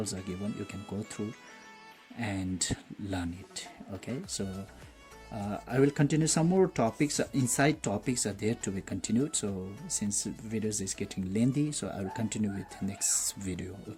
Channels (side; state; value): both; identical; correlation 1.00